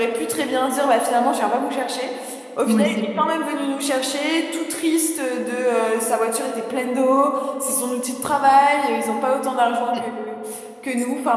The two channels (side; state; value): both; identical; correlation 1.00